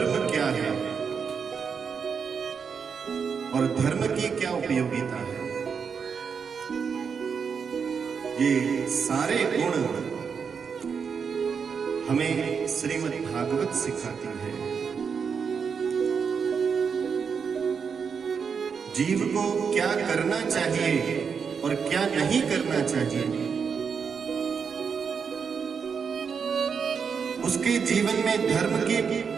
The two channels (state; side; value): quieter; left; 6.2 dB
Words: क्या है और धर्म की क्या उपयोगिता है, ये सारे गुण हमें श्रीमद् भागवत सिखाती है। जीव को क्या करना चाहिए और क्या नहीं करना चाहिए, उसके जीवन में धर्म की